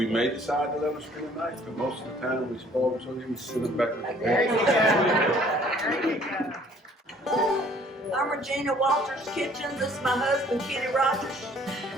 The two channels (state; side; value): normal; both; correlation 0.57